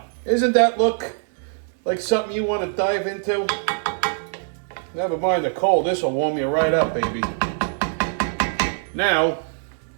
Isn't that look like something you want to dive into? Never mind the cold. This will warm you right up, baby. Now,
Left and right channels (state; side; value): silent; left; digital silence